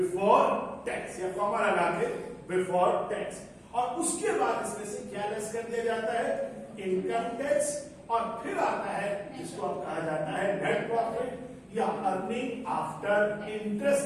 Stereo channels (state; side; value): identical; both; correlation 1.00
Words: tax, या कॉमा लगा के बिफोर टैक्स। और उसके बाद इसमें से क्या लेस कर दिया जाता है, इनकम टैक्स, और फिर आता है जिसको अब कहा जाता है नेट प्रॉफिट या earning after